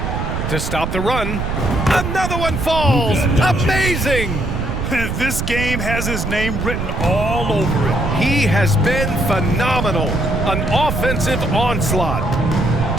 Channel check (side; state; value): right; noise; rumble, 3 dB below the sound